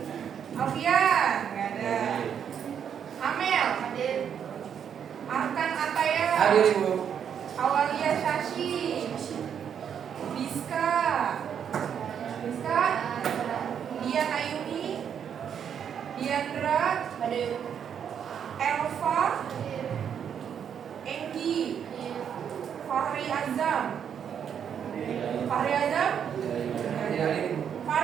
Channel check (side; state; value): left; quieter; 8.2 dB